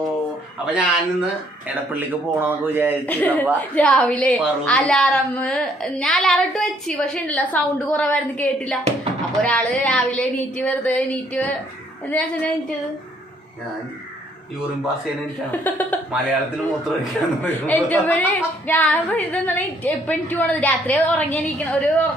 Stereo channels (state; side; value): normal; both; correlation 0.66